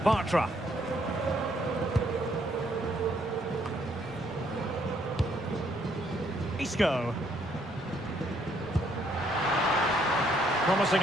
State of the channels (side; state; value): both; normal; correlation 0.69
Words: Bartra. Isco. Promising